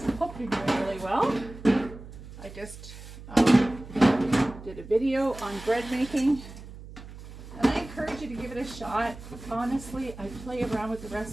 Hope you're doing really well. I just did a video on bread making, and I encourage you to give it a shot. Honestly, I play around with the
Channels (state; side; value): noise; right; hum, 15 dB below the sound